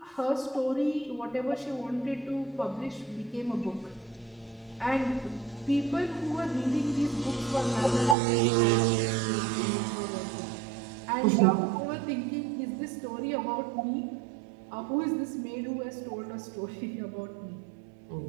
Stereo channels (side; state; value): left; drops out; at 8.2 s